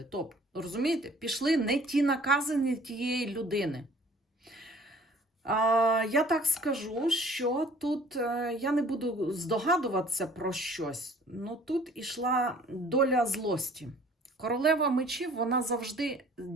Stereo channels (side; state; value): both; normal; correlation 0.53